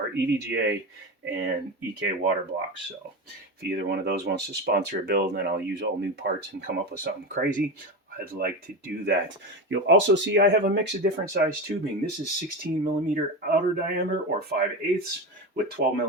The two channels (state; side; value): normal; both; correlation 0.20